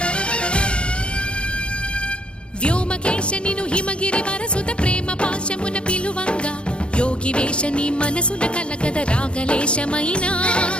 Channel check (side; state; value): right; late; 0.056 ms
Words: వ్యోమకేశనిను హిమగిరి వరసుత ప్రేమ పాశమున పిలువంగా యోగి వేషని మనసున కలకద రాగలేశమైనా